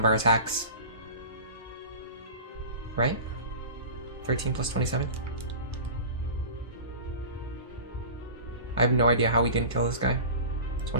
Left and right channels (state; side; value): inverted; both; correlation -0.36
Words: our attacks. Right? 13 plus 27? I have no idea how we didn't kill this guy.